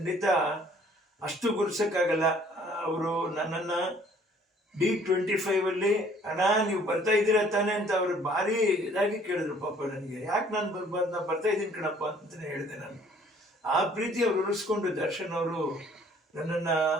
ಅಷ್ಟು ಗುರ್ಸೋಕ್ಕಾಗಲ್ಲ. ಅವರು ನನ್ನನ್ನು D25 ಅಣ್ಣ ನೀವು ಬರ್ತಾ ಇದ್ದೀರಾ ತಾನೆ ಅಂತ ಅವರು ಭಾರಿ ಇದಾಗಿ ಕೇಳಿದ್ರು. ಪಾಪ ನನಗೆ ಯಾಕೆ ನಾನು ಬರ್ಬಾರ್ದು, ನಾನು ಬರ್ತಾ ಇದ್ದೀನಿ ಕಣಪ್ಪ ಅಂತಲೇ ಹೇಳಿದೆ ನಾನು. ಆ ಪ್ರೀತಿ ಅವ್ರು ಉಳಿಸ್ಕೊಂಡು ದರ್ಶನ್ ಅವರು ನನ್ನನ್ನು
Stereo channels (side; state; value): both; normal; correlation 0.57